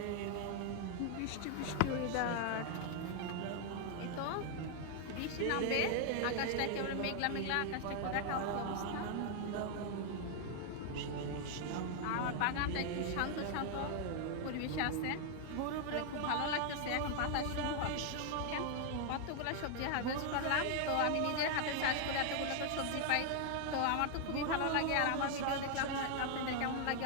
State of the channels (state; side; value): different; both; correlation 0.00